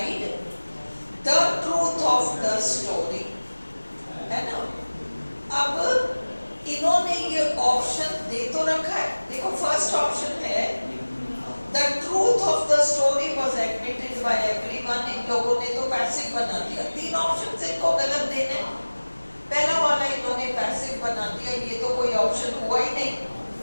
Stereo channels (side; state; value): both; inverted; correlation -1.00